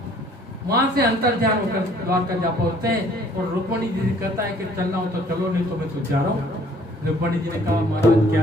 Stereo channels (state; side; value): normal; both; correlation 0.58